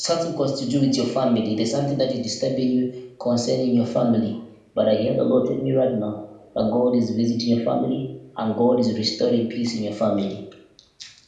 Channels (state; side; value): identical; both; correlation 1.00